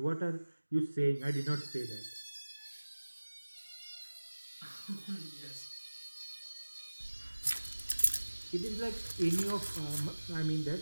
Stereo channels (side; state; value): both; inverted; correlation -1.00